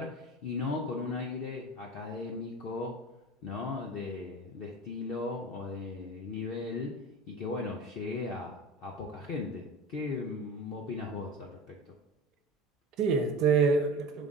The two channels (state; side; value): normal; both; correlation 0.34